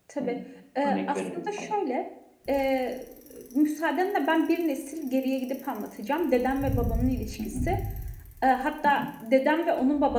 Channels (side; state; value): both; identical; correlation 1.00